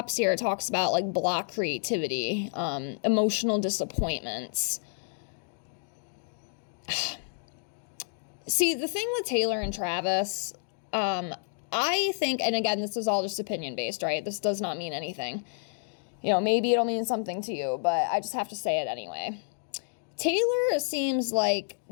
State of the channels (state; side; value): silent; right; digital silence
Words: here, it talks about like block creativity, emotional disappointments. See, the thing with Taylor and Travis, I think, and again, this is all just opinion based, right? This does not mean anything. You know, maybe it'll mean something to you, but I just have to say it anyway. Taylor seems like